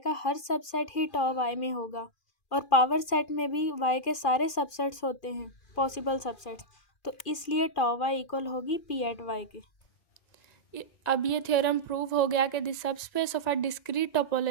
का हर सबसेट ही टॉ y में होगा और पावर सेट में भी y के सारे सबसेट्स होते हैं पॉसिबल सबसेट्स, तो इसलिए टॉ y इक्वल होगी p एट y के। अब ये थ्योरम प्रूव हो गया कि the subspace of a discrete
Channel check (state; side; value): late; right; 2.4 ms